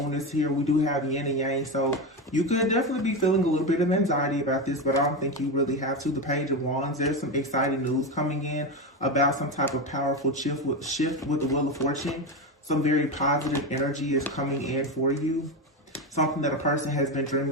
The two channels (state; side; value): normal; both; correlation 0.15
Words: is here. We do have yin and yang, so you could definitely be feeling a little bit of anxiety about this, but I don't think you really have to. The Page of Wands, there's some exciting news coming in about some type of powerful shift with the Wheel of Fortune. Some very positive energy is coming in for you. Something that a person has been